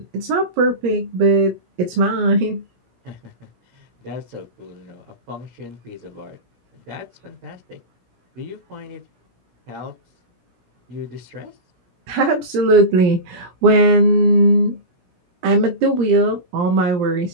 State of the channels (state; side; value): late; left; 17 ms